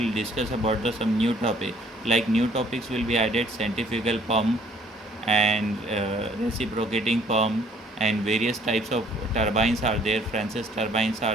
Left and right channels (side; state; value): both; normal; correlation 0.60